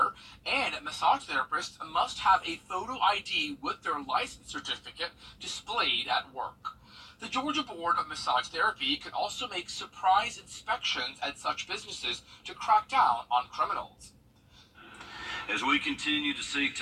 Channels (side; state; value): both; identical; correlation 1.00